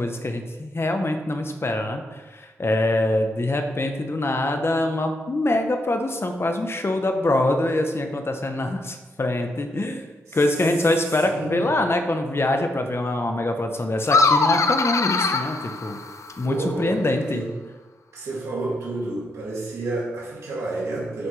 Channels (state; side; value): normal; both; correlation 0.76